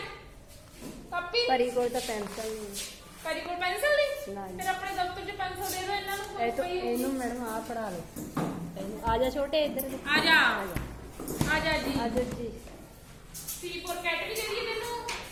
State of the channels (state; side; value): identical; both; correlation 1.00